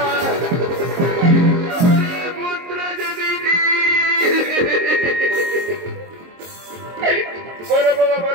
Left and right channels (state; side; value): late; left; 23 ms